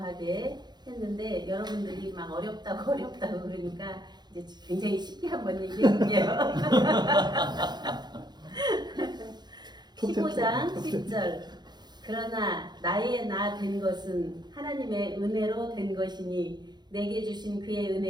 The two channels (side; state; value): left; late; 0.21 ms